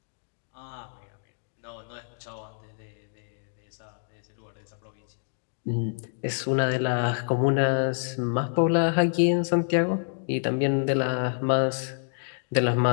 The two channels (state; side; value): silent; right; digital silence